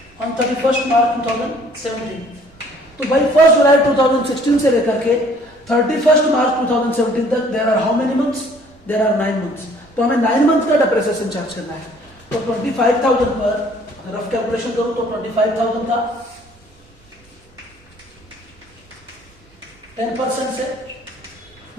ऑन 31 मार्च 2017। तो भाई 1 जुलाई 2016 से लेकर के 31 मार्च 2017 तक there are how many months? There are 9 months. तो हमें 9 मंथ का डेप्रिसिएशन चार्ज करना है। तो 25,000 पर रफ कैलकुलेशन करूं तो 25,000 का 10% से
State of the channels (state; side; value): normal; both; correlation 0.57